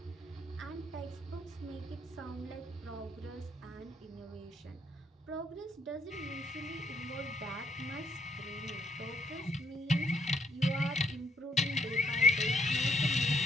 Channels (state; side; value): normal; both; correlation 0.70